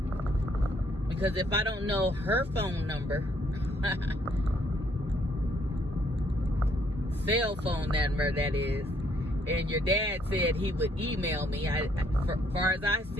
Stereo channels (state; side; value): normal; both; correlation 0.68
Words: Because if I don't know her phone number, cell phone number that is, and your dad said he would email me, as far as I